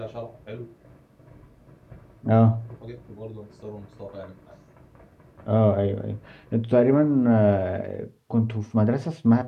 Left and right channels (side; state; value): both; identical; correlation 1.00